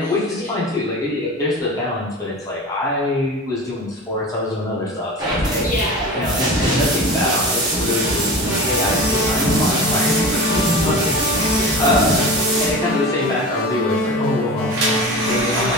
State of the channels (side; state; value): both; normal; correlation 0.32